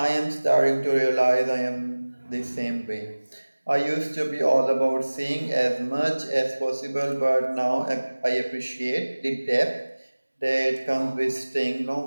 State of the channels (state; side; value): inverted; both; correlation -1.00